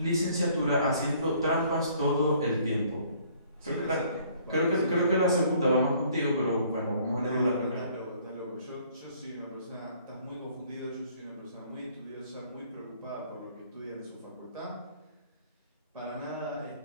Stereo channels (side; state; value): both; inverted; correlation -0.59